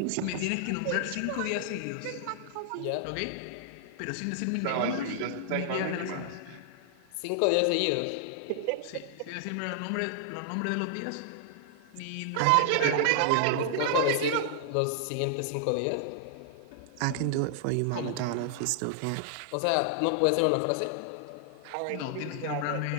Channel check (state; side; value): different; both; correlation -0.01